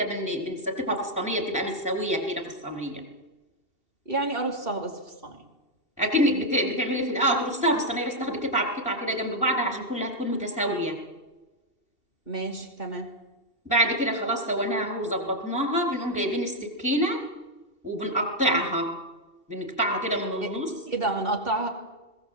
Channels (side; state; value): right; late; 2.7 ms